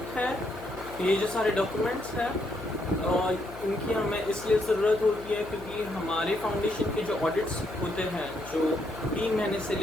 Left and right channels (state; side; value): noise; left; hum, 14 dB below the sound